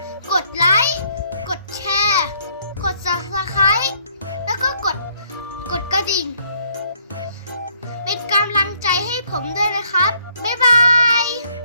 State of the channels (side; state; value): both; inverted; correlation -0.66